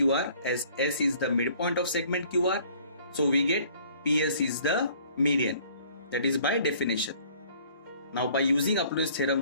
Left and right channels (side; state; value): both; inverted; correlation -0.56